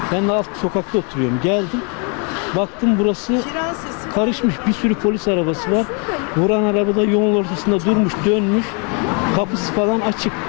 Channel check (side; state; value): right; quieter; 36.4 dB